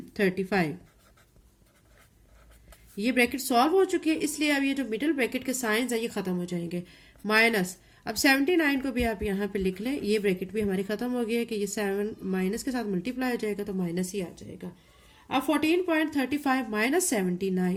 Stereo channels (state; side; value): identical; both; correlation 1.00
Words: ये ब्रैकेट सॉल्व हो चुकी है, इसलिए अब ये जो मिडिल ब्रैकेट के साइंस है ये खत्म हो जाएंगे। माइनस, अब 79 को भी आप यहाँ पे लिख लें, ये ब्रैकेट भी हमारी खत्म हो गई है कि ये 7 माइनस के साथ मल्टीप्लाई हो जाएगा तो माइनस ही आ जाएगा। अब 14.35 माइनस